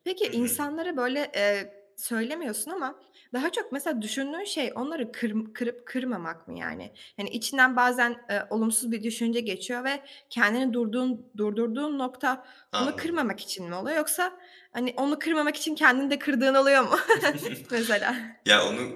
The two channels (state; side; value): identical; both; correlation 1.00